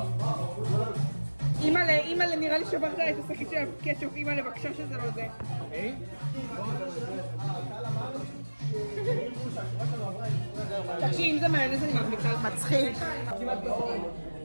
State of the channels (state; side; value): inverted; both; correlation -1.00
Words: אימא'לה, נראה לי שברת את השקית של הקטשופ, אימא'לה, בבקשה שזה לא זה. תקשיב, אם זה מיונז אני מבליחה לך. מצחיק.